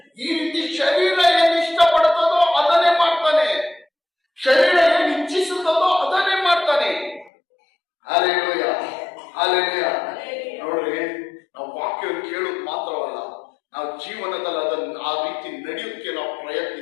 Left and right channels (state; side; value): drops out; right; at 7.3 s